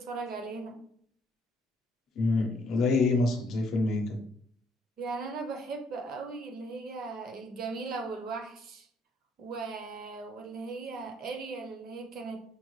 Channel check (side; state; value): both; normal; correlation 0.67